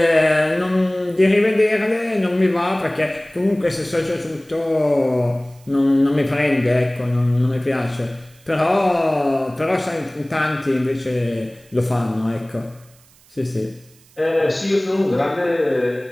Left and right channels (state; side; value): noise; right; hiss, 29 dB below the sound